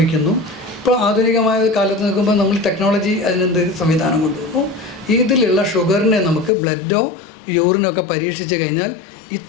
ഇപ്പോൾ ആധുനികമായ കാലത്ത് നിൽക്കുമ്പോൾ നമ്മൾ ടെക്നോളജി അതിനെന്ത് സംവിധാനം കൊണ്ടുവന്നു. ഇതിലുള്ള ഷുഗറിനെ നമുക്ക് ബ്ലഡോ യൂറിനൊക്കെ പരീക്ഷിച്ച് കഴിഞ്ഞാൽ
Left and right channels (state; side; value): drops out; right; at 6.5 s